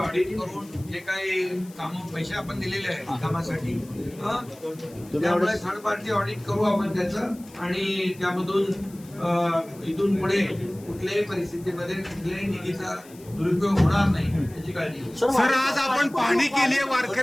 करून जे काही कामं पैसे आपण दिलेले आहेत कामासाठी, त्यामुळे थर्ड पार्टी ऑडिट करू आपण त्याचं आणि त्यामधून इथून पुढे कुठल्याही परिस्थितीमध्ये कुठल्याही निधीचा दुरुपयोग होणार नाही याची काळजी घेऊ. सर, आज आपण पाहणी केली,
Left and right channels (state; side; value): noise; left; hiss, 23 dB below the sound